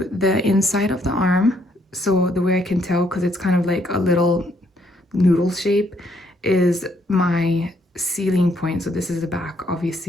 the inside of the arm. So the way I can tell, because it's kind of like a little noodle shape, is my sealing point. So this is the back.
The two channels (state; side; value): normal; both; correlation 0.70